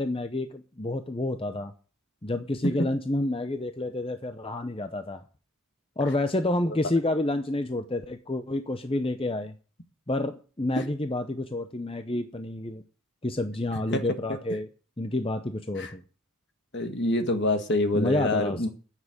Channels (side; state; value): both; normal; correlation 0.58